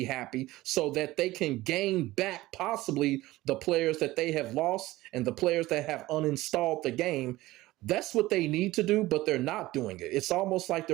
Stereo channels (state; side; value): quieter; left; 17.8 dB